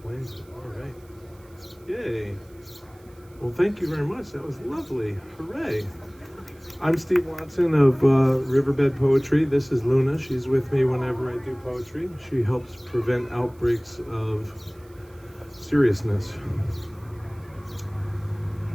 it. All right. Yay. Well, thank you very much. That was lovely. Hooray. I'm Steve Watson of Riverbed Poetry. This is Luna. She's with me whenever I do poetry. She helps prevent outbreaks of seriousness.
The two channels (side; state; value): right; noise; hiss, 30 dB below the sound